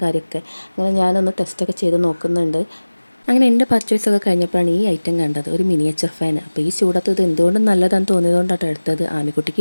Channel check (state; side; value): inverted; both; correlation -1.00